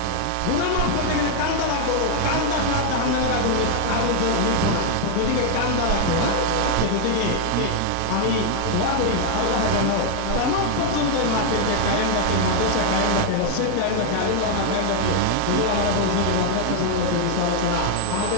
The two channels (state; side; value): different; both; correlation 0.00